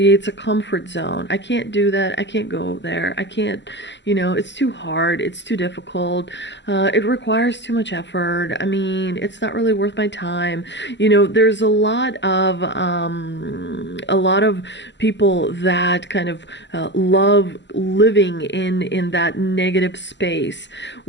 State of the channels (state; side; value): late; right; 0.52 ms